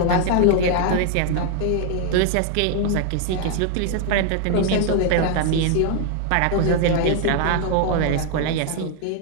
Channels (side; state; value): both; different; correlation 0.00